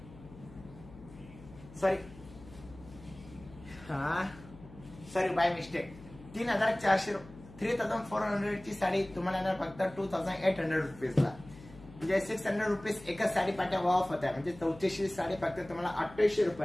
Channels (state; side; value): noise; left; hum, 19 dB below the sound